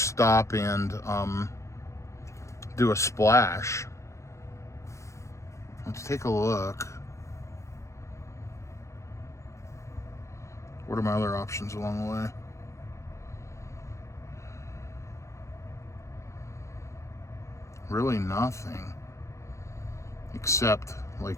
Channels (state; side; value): late; right; 0.14 ms